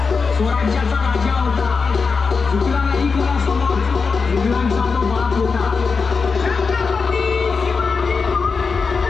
स्वराज्याचा राजा होता. चुकला नाही कोणासमोर, इंग्लंडचा तो बाप होता. छत्रपती शिवाजी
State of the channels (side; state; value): right; quieter; 4.9 dB